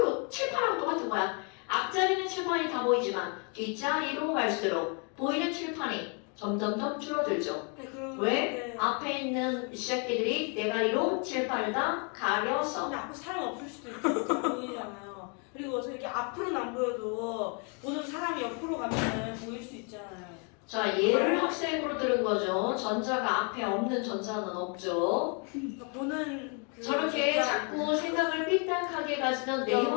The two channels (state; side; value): quieter; right; 36.9 dB